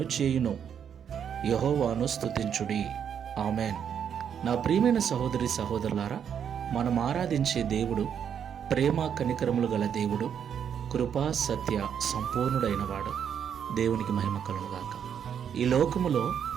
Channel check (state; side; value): quieter; left; 8.2 dB